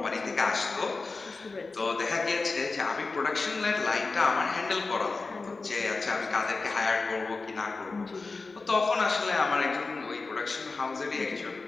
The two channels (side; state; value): right; quieter; 3.9 dB